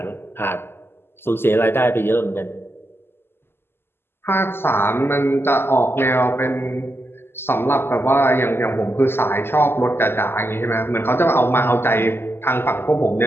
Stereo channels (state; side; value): late; right; 0.11 ms